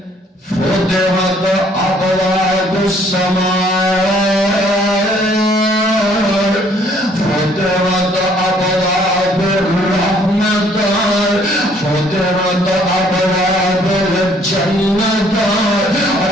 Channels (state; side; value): normal; both; correlation 0.62